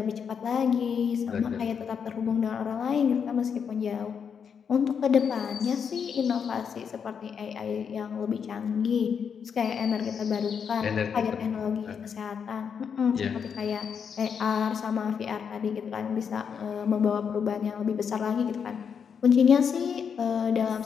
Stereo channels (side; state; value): right; quieter; 6.9 dB